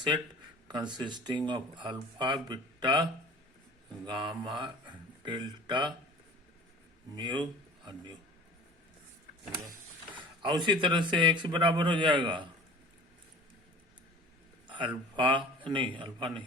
consisting of alpha beta gamma delta mu और न्यू। और उसी तरह से एक्स बराबर हो जाएगा अल्फा नहीं,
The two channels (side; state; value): both; normal; correlation 0.43